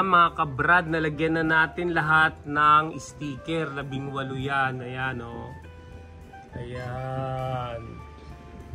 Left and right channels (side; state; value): both; identical; correlation 1.00